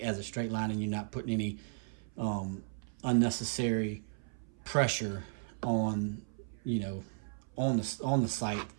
as a straight line, and you're not putting any unnecessary pressure on, you know, on the sight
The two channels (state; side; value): silent; left; 54 dB below the other